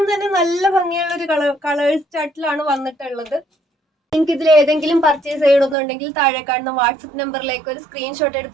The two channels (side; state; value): left; drops out; at 5.8 s